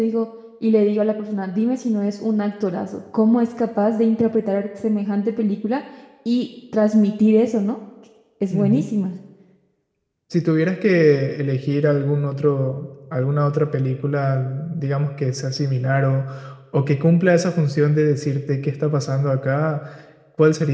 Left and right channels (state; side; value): identical; both; correlation 1.00